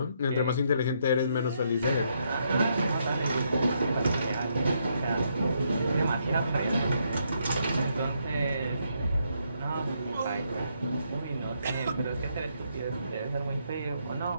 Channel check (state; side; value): inverted; both; correlation -0.76